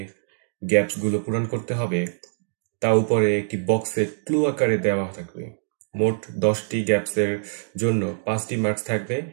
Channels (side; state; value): left; silent; digital silence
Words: গ্যাপসগুলো পূরণ করতে হবে তা উপরে একটি বক্সে ক্লু আকারে দেওয়া থাকবে। মোট 10টি গ্যাপসের জন্য 5টি মার্কস থাকবে।